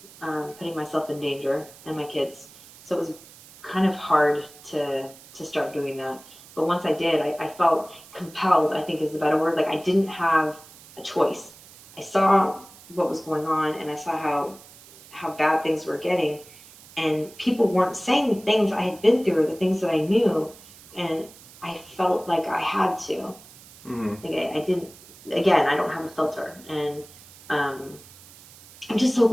putting myself in danger and my kids. So it was kind of hard to start doing that. But once I did, I felt compelled, I think is the better word. Like I didn't have a choice. I saw what was going on, and I saw how bad things were getting. And people weren't saying the things I had been through or the things that I knew. And I felt like I had to. Mm-hmm. Like I didn't, again, I don't have a filter. And I'm just so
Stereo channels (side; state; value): right; noise; hiss, 21 dB below the sound